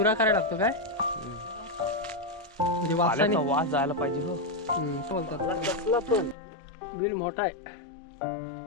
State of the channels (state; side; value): drops out; right; at 6.4 s